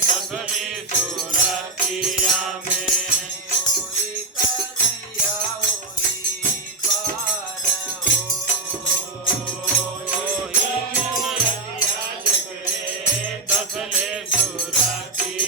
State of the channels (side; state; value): left; quieter; 3.3 dB